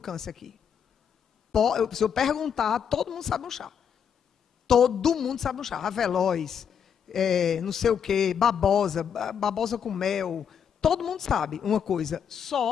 aqui. Se eu perguntar, todo mundo sabe um chá. Todo mundo sabe um chá. Avelós, não sei o quê, babosa com mel. Todo mundo sabe uma coisa.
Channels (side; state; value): right; quieter; 7.7 dB